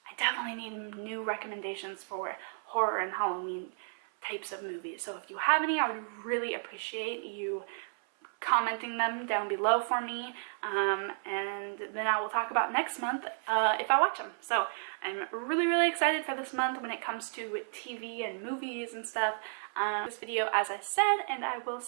definitely need new recommendations for horror and Halloween types of movies. So if you have any, I would really appreciate you commenting them down below for me, and then I will talk about next month if I watch them. So I'm really excited for this month when it comes to TV and movies and stuff. This video, as I said, and I will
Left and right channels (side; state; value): left; silent; 56 dB below the other